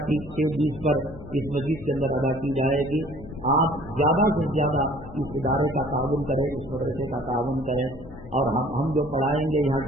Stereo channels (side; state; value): left; noise; hum, 16 dB below the sound